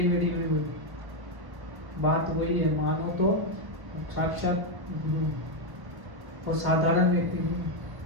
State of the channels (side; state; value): left; late; 1.1 ms